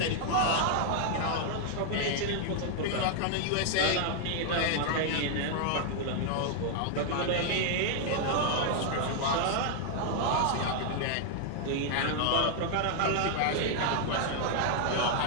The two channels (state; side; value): different; both; correlation 0.00